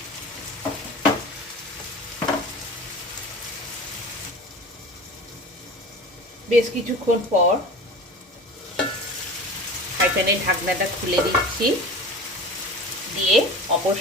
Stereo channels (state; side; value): normal; both; correlation 0.36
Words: বেশ কিছুক্ষণ পর ফ্রাই প্যানের ঢাকনাটা খুলে দিচ্ছি, দিয়ে অপর